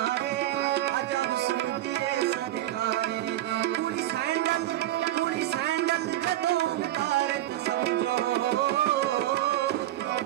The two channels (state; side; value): quieter; left; 14.0 dB